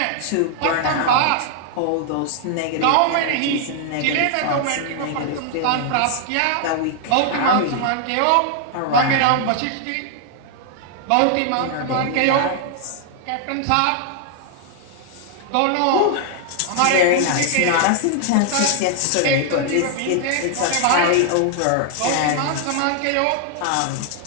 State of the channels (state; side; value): different; both; correlation 0.00